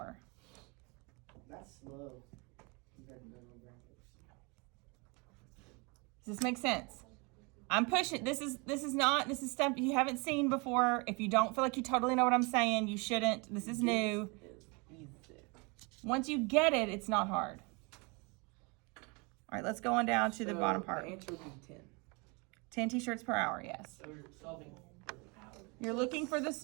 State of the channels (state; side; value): quieter; left; 29.7 dB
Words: That's slow compared to normal graphics. Does this make sense? I'm pushing. This is stuff you haven't seen before. If you don't feel like you totally know what I'm saying, you shouldn't. This is new. It's easy. Once you get it, it's not hard. All right, let's go on down to the So bottom part. The answer would be 10. 10 t-shirts per hour, yes. So we're solving. You're looking for